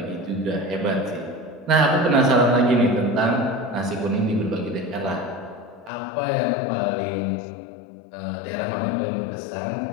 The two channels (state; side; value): drops out; right; at 5.9 s